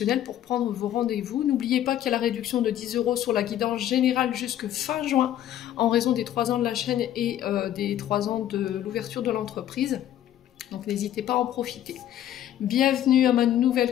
pour prendre vos rendez-vous. N'oubliez pas qu'il y a la réduction de 10 € sur la guidance générale jusque fin juin en raison des 3 ans de la chaîne et des 3 ans de l'ouverture de l'entreprise. Donc n'hésitez pas à en profiter. Bienvenue à ma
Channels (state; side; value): quieter; right; 11.7 dB